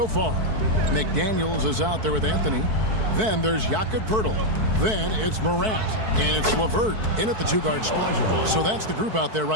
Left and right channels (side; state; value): left; late; 4.6 ms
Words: far. McDaniels is out there with Anthony. Then there's Jakob Poeltl. Then it's Morant. And it's LeVert in at the two-guard spot. So that's the group out there